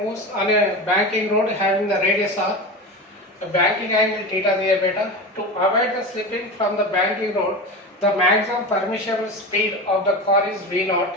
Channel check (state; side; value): normal; both; correlation 0.26